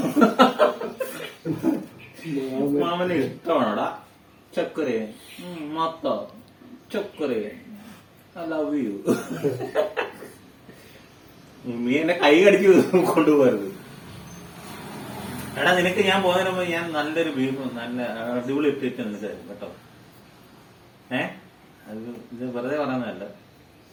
മാമന് ഇഷ്ടമാണോടാ ചക്കര മത്ത ചക്കര ഐ ലവ് യു. നീ എന്നെ കൈ കടിച്ച് കൊണ്ടുപോകരുത്. എടാ നിനക്ക് ഞാൻ പോകുന്നതിന് മുമ്പ് ഞാൻ നല്ലൊരു ബീഫ് നല്ല അടിപൊളി ഇട്ടിട്ട് നിനക്ക് തരും കേട്ടോ. അത് ഇത് വെറുതെ പറയുന്നതല്ല.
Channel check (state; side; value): identical; both; correlation 1.00